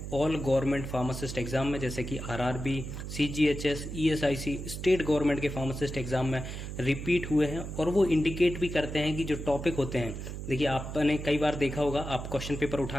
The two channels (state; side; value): noise; right; hum, 7 dB below the sound